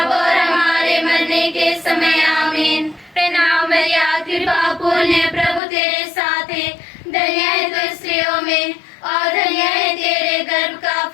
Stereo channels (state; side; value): drops out; right; at 5.6 s